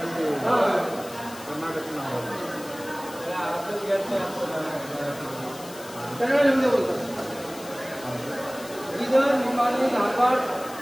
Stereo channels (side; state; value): left; noise; hiss, 16 dB below the sound